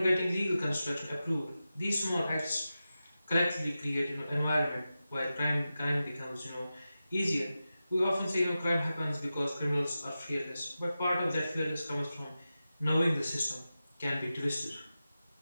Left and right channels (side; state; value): both; inverted; correlation -0.93